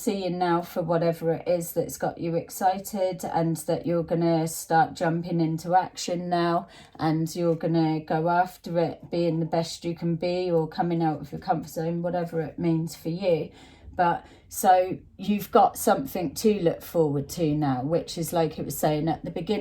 now for whatever it is that's got you excited, and that you're going to start jumping into action now, and you're going to go after it, being the best you can be, or coming out of your comfort zone, whatever it means for you. But so you've got something to look forward to now, which is like it was saying at the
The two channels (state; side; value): identical; both; correlation 1.00